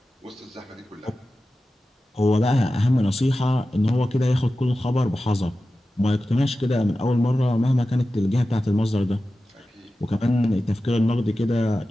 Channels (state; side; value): normal; both; correlation 0.94